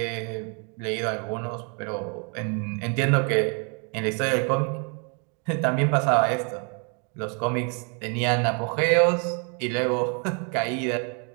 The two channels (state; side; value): quieter; left; 37.1 dB